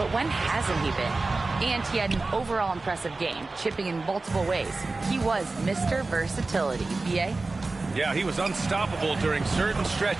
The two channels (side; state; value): left; quieter; 3.5 dB